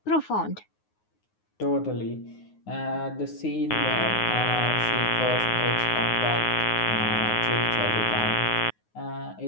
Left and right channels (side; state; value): right; late; 9.5 ms